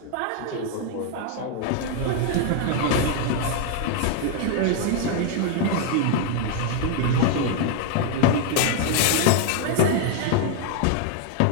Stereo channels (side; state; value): both; different; correlation 0.00